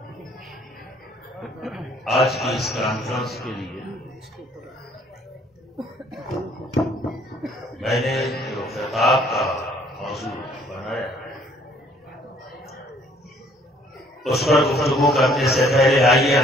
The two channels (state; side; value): normal; both; correlation 0.61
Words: آج کی اس کانفرنس کے لیے میں نے جو خطاب کا موضوع بنایا اس پر گفتگو کرنے سے پہلے آئیے